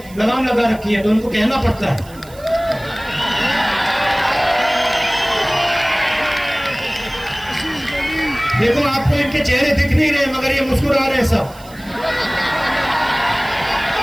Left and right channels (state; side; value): noise; right; hiss, 22 dB below the sound